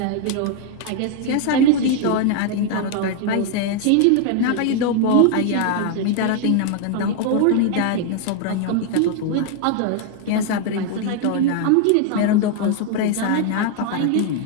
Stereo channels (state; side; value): different; both; correlation 0.00